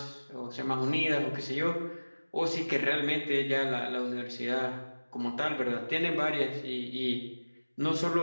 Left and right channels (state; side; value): inverted; both; correlation -1.00